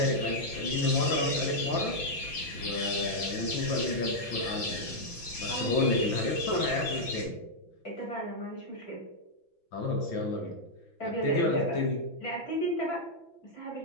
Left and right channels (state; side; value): late; right; 6.0 ms